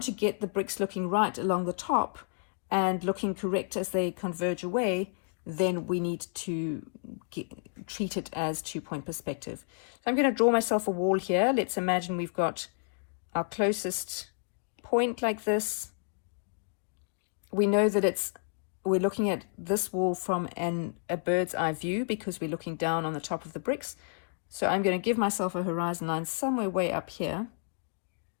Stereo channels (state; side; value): silent; right; 57 dB below the other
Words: to get the bricks looking right along the top and looking correct as they converge away, then we need to treat it as 2-point perspective. I'm going to draw myself a wall here. Let's imagine we've got our closest point like this. We know that we're looking at this wall from a bird's eye view because we're looking down on the top of the bricks. So I'm going to give myself a horizon line somewhere way up here